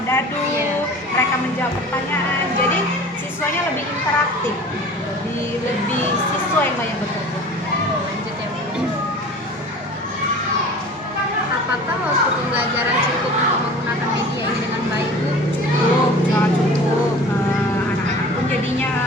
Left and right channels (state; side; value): normal; both; correlation 0.42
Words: dadu, mereka menjawab pertanyaan. Jadi siswanya lebih interaktif, lebih siswa yang banyak bekerja. Lanjut ya, Bu. Apakah waktu pembelajaran cukup untuk menggunakan media ini dengan baik, Bu? Cukup, sangat cukup. Anak-anak pun jadinya,